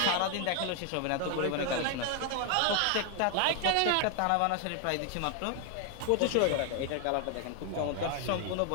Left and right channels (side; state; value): both; different; correlation 0.00